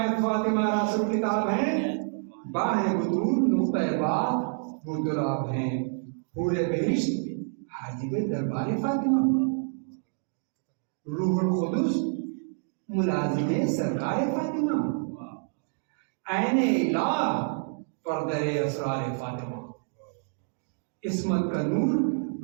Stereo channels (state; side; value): silent; left; digital silence